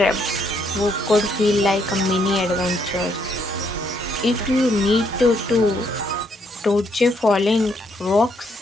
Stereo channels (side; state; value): both; normal; correlation 0.72